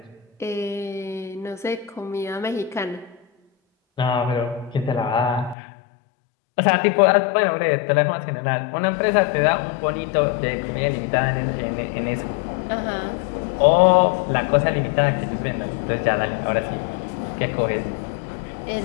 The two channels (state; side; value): drops out; right; at 5.6 s